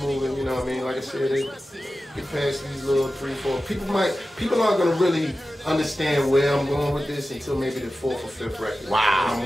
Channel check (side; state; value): both; normal; correlation 0.94